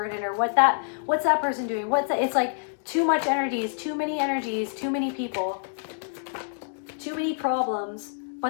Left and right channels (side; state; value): right; silent; digital silence